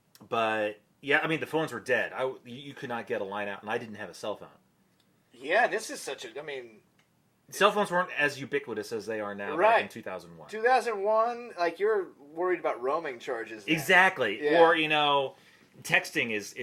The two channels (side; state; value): both; identical; correlation 1.00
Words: But yeah, I mean the phones were dead. You could not get a line out, and I didn't have a cell phone. Yeah, this is such a. I mean, cell phones weren't as ubiquitous as they are now. Right. Back in 2001. 2001, like you're worried about roaming charges. Now. Exactly. Yeah. Or texting